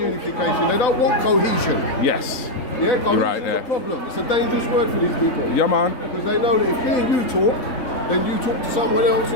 They don't want cohesion. Yes. Yeah, cohesion right is there. a problem. It's a dangerous word for these people. Yeah, man. Because they know that if me and you talk, then you talk to someone else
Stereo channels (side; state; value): right; late; 4.0 ms